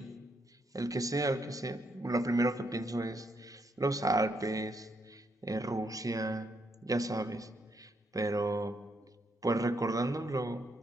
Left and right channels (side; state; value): both; normal; correlation 0.76